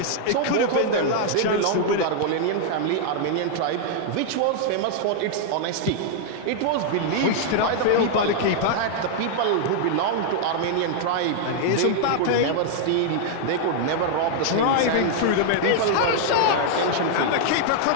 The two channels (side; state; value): both; different; correlation 0.00